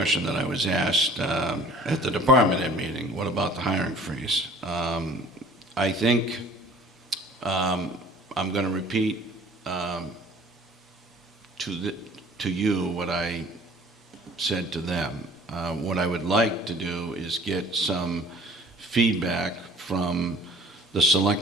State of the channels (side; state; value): both; normal; correlation 0.49